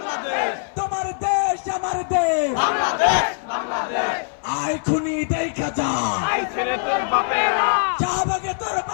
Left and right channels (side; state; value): right; silent; 58 dB below the other